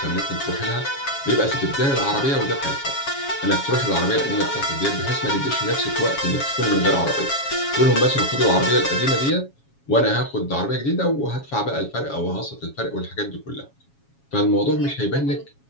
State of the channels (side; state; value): right; late; 7.3 ms